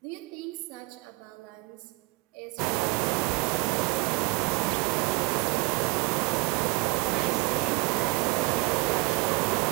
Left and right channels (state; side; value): quieter; left; 24.6 dB